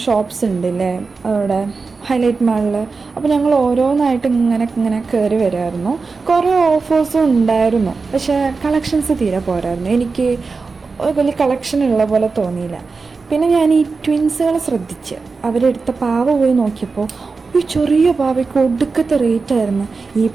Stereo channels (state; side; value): quieter; left; 4.4 dB